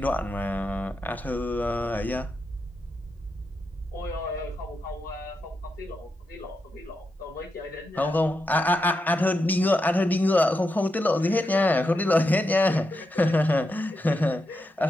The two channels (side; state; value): both; normal; correlation 0.85